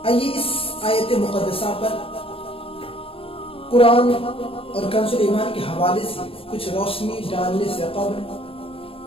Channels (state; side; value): late; right; 0.27 ms